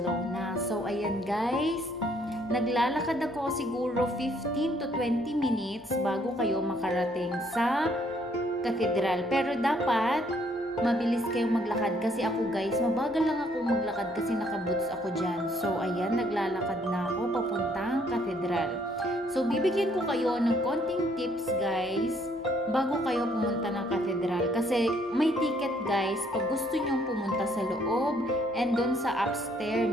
So ayan guys, naglalakad ako siguro 15 to 20 minutes bago kayo makarating sa Cathedral. Pero dapat mabilis kayong maglakad kasi ako guys, mabagal lang ako maglakad kasi nakaboots ako dyan. So ayan, naglalakad na ako papuntang Cathedral. So bibigyan ko kayo ng konting tips guys bago kayo pumunta ng Cathedral. Kasi may ticket guys pag gusto nyong pumunta sa loob and doon sa upstairs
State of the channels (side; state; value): both; normal; correlation 0.66